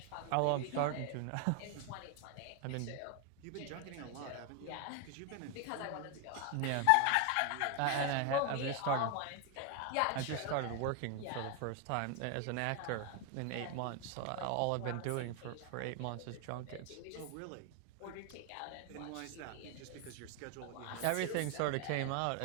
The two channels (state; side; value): different; both; correlation 0.01